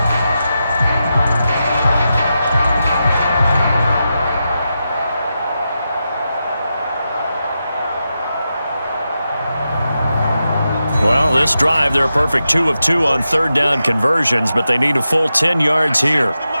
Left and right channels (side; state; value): both; inverted; correlation -0.89